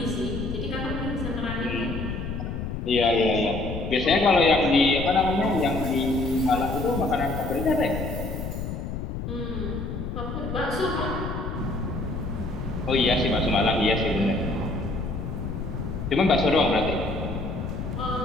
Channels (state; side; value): noise; left; rumble, 5 dB below the sound